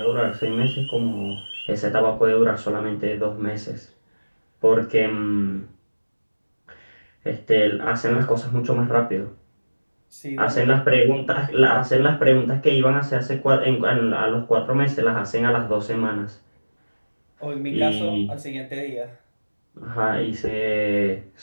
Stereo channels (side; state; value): both; inverted; correlation -1.00